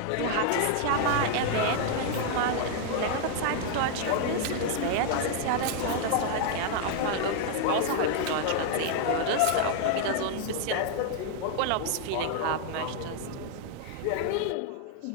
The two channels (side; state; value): both; different; correlation 0.00